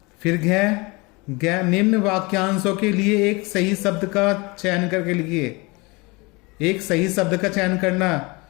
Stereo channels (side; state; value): right; quieter; 26.1 dB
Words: फिर घ निम्न वाक्यांशों के लिए एक सही शब्द का चयन करके लिखिए। एक सही शब्द का चयन करना।